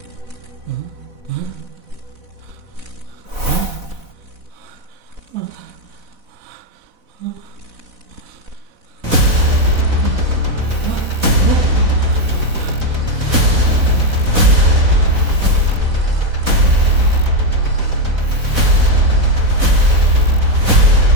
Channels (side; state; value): left; late; 4.0 ms